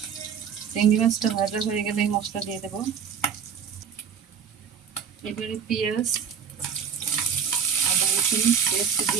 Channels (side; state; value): left; quieter; 7.1 dB